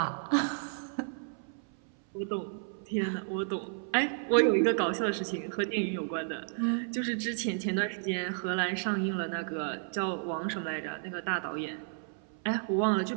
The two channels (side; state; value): left; silent; 56 dB below the other